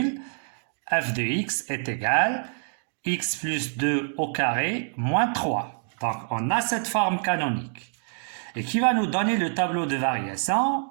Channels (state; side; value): silent; left; 61 dB below the other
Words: f de x est égal à x plus 2 au carré moins 3. Donc, on a cette forme canonique. Et qui va nous donner le tableau de variation,